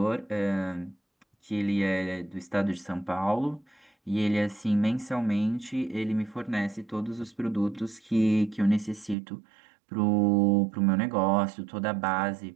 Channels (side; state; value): left; drops out; at 9.2 s